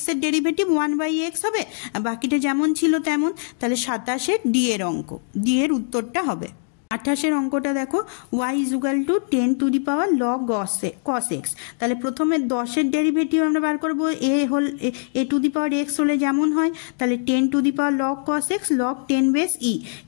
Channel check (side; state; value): right; silent; digital silence